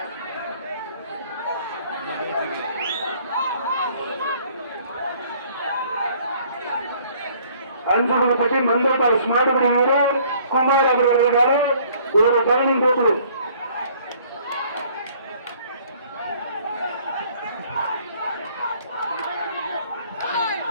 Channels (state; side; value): inverted; both; correlation -0.58